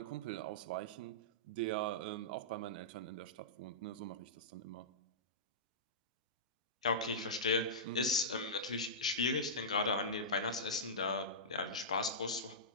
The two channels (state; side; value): normal; both; correlation -0.15